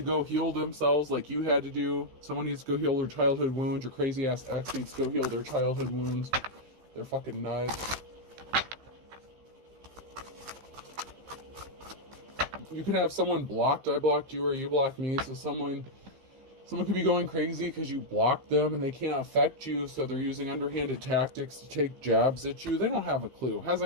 go heal themselves like you had to do. Someone needs to go heal their childhood wounds. Your crazy-ass ex needs to go heal their childhood wounds. They're fucking nuts. You could have someone blocked. I blocked you or you blocked me. So someone could be going crazy because you blocked them and they can't affect you. So they're using underhanded tactics to take jabs at you. They don't have a clue.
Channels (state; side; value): late; left; 15 ms